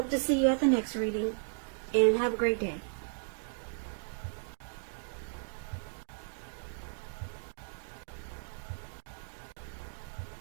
to see you at the next reading, and have a great day.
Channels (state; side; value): silent; left; digital silence